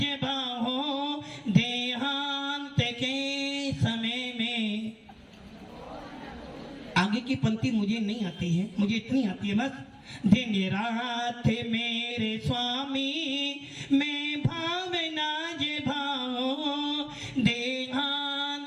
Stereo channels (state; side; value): identical; both; correlation 1.00